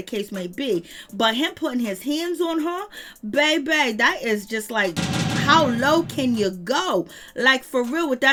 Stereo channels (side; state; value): both; identical; correlation 1.00